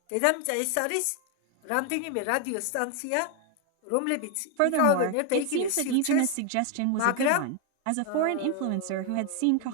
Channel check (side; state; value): both; different; correlation 0.01